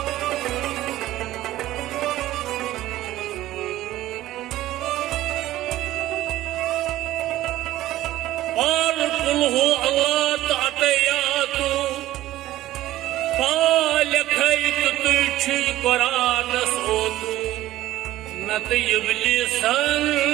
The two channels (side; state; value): left; quieter; 15.1 dB